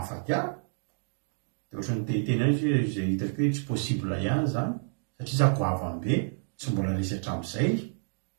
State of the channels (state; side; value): silent; left; digital silence